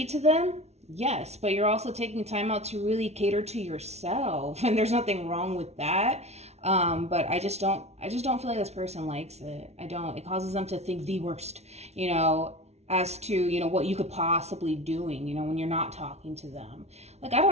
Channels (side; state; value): left; late; 0.31 ms